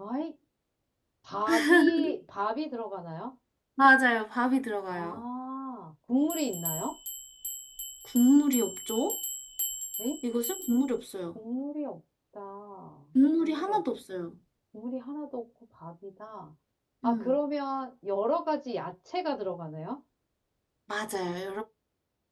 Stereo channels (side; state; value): both; identical; correlation 1.00